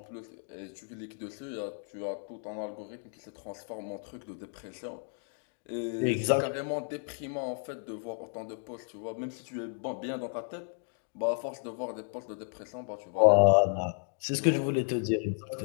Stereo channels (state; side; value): silent; right; 56 dB below the other